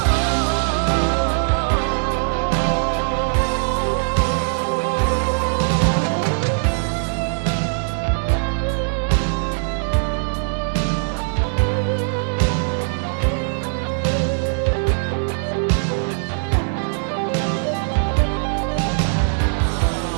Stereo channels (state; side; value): silent; left; digital silence